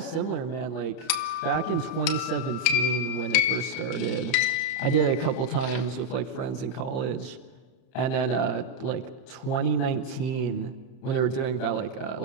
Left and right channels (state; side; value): late; right; 31 ms